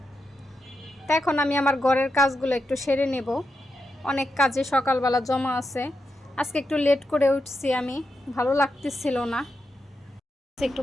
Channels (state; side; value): normal; both; correlation 0.86